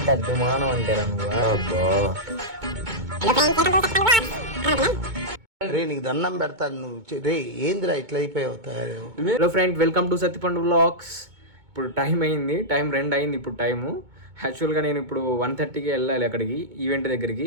అద్దుమానం అంటారా నువ్వు? రే నీకు దండం పెడతాను నువ్వు రే ఏందిరా ఇట్లా అయిపోయావు తయారు. Hello friend, welcome to Sattipandu vlogs. ఇప్పుడు టైం అయింది, 2 అయింది ఇప్పుడు టైము. యాక్చువల్గా నేను ఇప్పుడు 1:30కి వెళ్ళాలి అక్కడికి, ఈవెంట్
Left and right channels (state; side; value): late; left; 2.2 ms